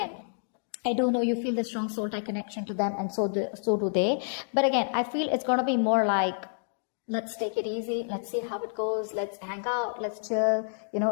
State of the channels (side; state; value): right; silent; digital silence